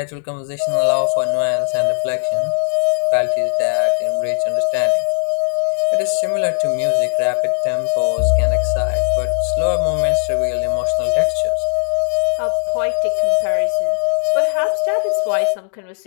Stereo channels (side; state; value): right; silent; 65 dB below the other